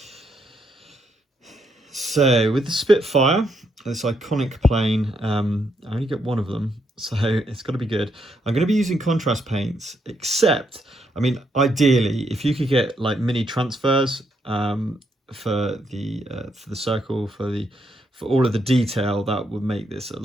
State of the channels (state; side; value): normal; both; correlation 0.77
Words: So with the Spitfire, this iconic plane, I only get one of them, so it's got to be good. I'm going to be using contrast paints, except, I mean, ideally, if you could get like mini transfers for the circle, for all of the detail, that would make this